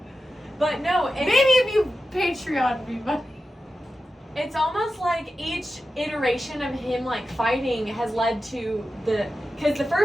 But no, Maybe if you Patreon me, but... It's almost like each iteration of him like fighting has led to because the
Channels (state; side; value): normal; both; correlation 0.92